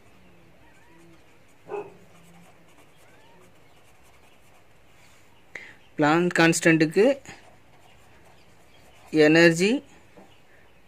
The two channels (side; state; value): both; identical; correlation 1.00